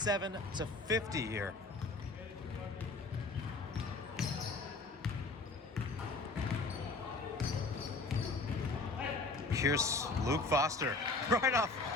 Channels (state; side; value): quieter; right; 3.4 dB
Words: here. Here's Luke Foster, right off